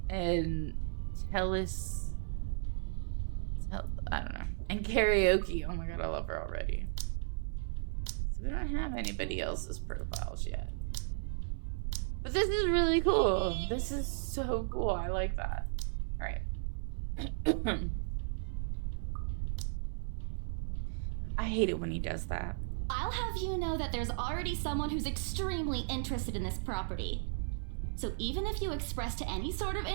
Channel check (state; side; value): silent; left; 54 dB below the other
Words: and I don't know, and karaoke. Oh my god, I love her already. So we don't have anybody else's profiles yet. But this is really cool. This is so cool. I like that. Alright. I hate it when he does that. I'll have you know that there's already someone who's extremely interested in this property. So even if you expressed any sort of